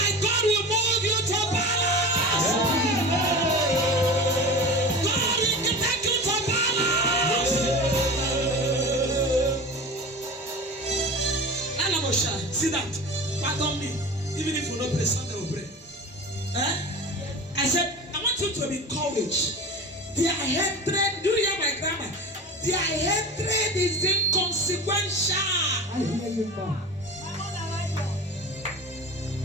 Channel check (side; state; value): both; normal; correlation 0.33